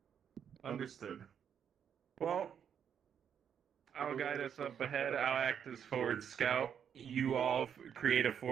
Understood. Well, I'll guide us up ahead. I'll act as forward scout. You all create a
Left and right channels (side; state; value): left; quieter; 8.2 dB